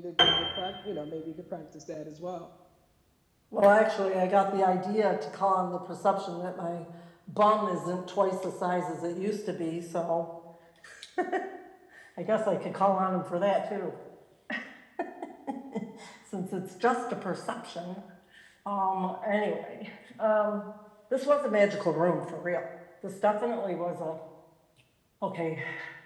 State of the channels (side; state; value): both; identical; correlation 1.00